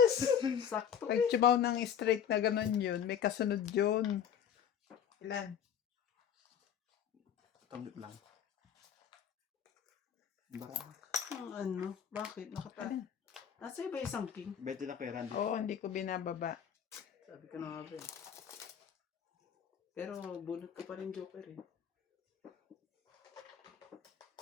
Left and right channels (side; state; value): right; quieter; 8.5 dB